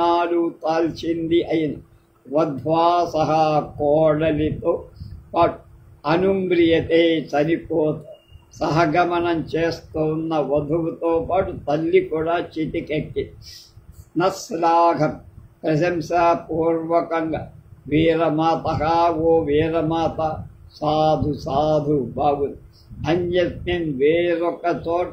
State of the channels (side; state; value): both; identical; correlation 1.00